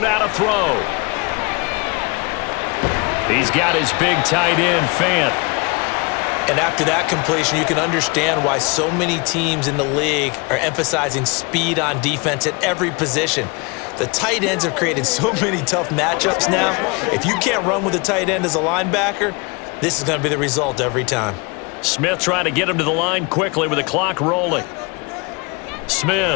to throw. He's got his big tight end, Fant. And after that completion, you can understand why so many teams in the league are emphasizing speed on defense at every position. The tight ends have created so many tough matchups now. If you can't run with a tight end as a linebacker, this is going to be the result every time. Smith trying to get him to the line quickly with the clock rolling.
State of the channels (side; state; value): right; quieter; 29.2 dB